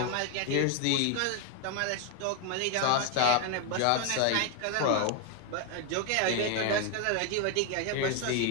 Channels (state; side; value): different; both; correlation 0.01